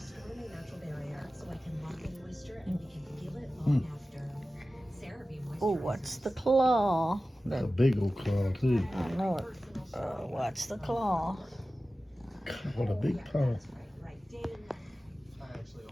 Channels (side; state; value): both; normal; correlation 0.95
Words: Oh, what's the claw? That's a big old claw too. I know it. What's the claw? What a big paw. I actually